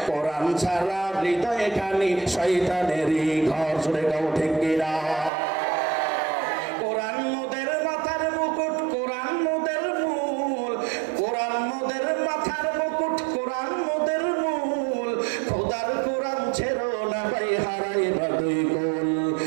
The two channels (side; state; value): left; drops out; at 5.3 s